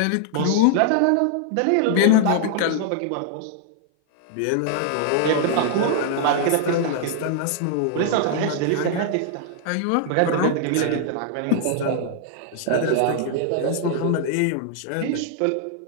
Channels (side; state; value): both; different; correlation 0.00